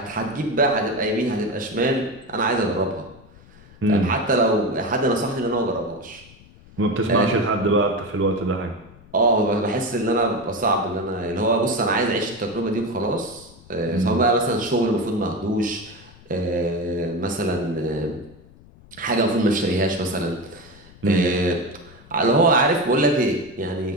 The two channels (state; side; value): noise; left; rumble, 23 dB below the sound